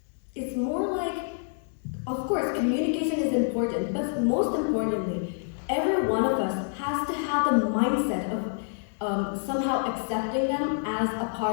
It's more like, of course, communication is important, but most importantly, every one of us has to have the mindset of somehow accepting them as a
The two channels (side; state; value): right; silent; digital silence